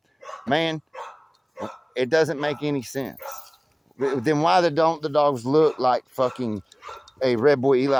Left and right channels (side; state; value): both; identical; correlation 1.00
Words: man, it doesn't make any sense. Then why don't the dogs look like fucking a Red Boy